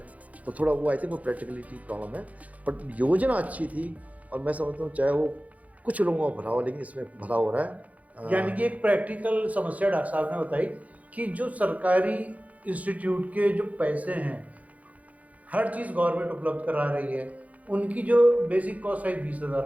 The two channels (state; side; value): late; left; 0.071 ms